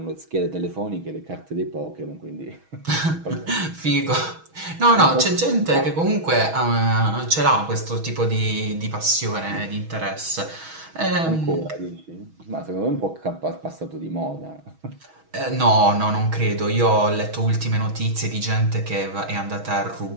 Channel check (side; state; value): left; late; 6.2 ms